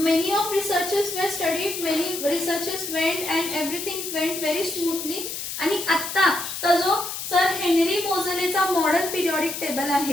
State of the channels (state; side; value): noise; left; hiss, 6 dB below the sound